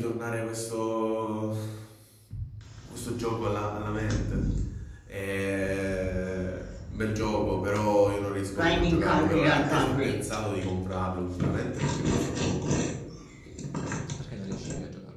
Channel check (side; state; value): both; identical; correlation 1.00